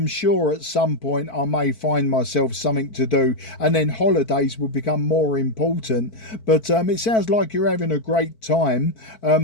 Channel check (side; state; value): right; late; 4.5 ms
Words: sure at some point I may find myself something to do, and then holidays will become more important. But it sounds like you're having a great time.